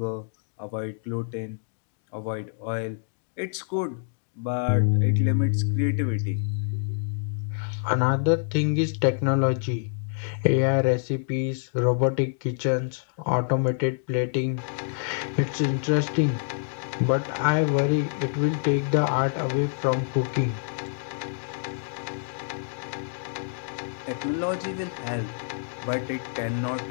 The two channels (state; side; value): silent; right; digital silence